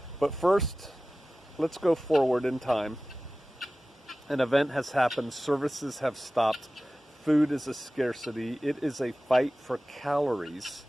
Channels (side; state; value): both; normal; correlation 0.96